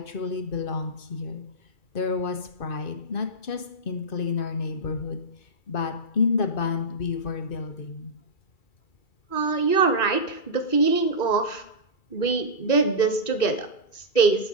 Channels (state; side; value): late; right; 2.3 ms